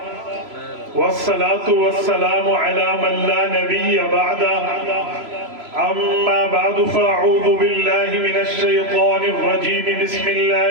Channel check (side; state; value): left; late; 3.0 ms